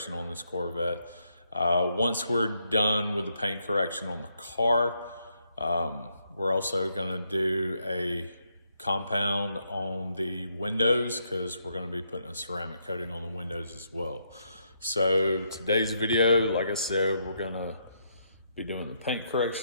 on this Corvette. Once we're done with the paint correction on the car, we're also going to do a compound on the windows because we're going to be putting a ceramic coating on the windows as well. So today's video, like I said, we're going to be doing the paint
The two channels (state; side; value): inverted; both; correlation -0.77